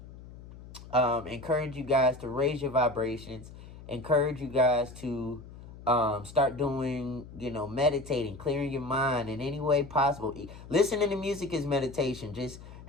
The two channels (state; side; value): noise; left; hum, 16 dB below the sound